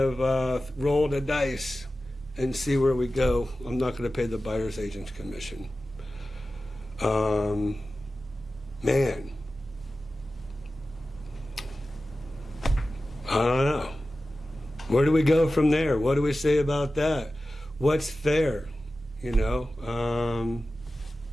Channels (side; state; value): both; normal; correlation 0.94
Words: roll the dice and see where we go. I'm not going to pay the buyer's agent's commission. Man, I don't know. Where do we go from there? What do we say about that? What's fair? You know,